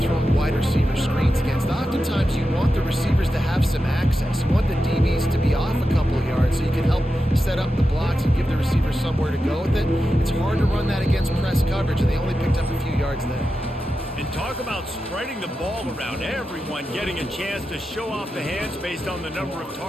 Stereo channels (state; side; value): normal; both; correlation 0.90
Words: throwing wide receiver screens against. Oftentimes you want the receivers to have some access. You want the DBs to be off a couple of yards so you can help set up the blocks and give the receivers somewhere to go with it. It's hard to run that against press coverage, and they only picked up a few yards there. And talk about spreading the ball around. Everyone getting a chance to show off the hands based on the number of